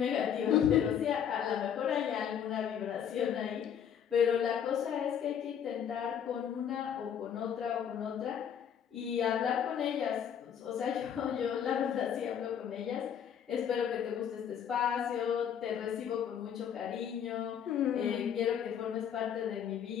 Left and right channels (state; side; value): quieter; right; 8.6 dB